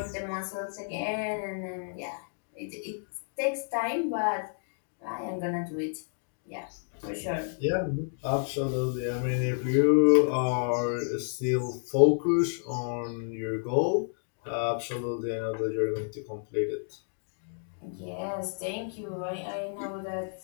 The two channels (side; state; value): right; silent; digital silence